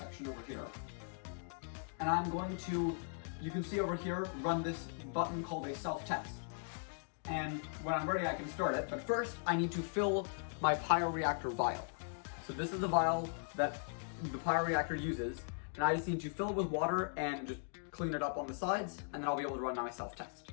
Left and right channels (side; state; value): right; silent; digital silence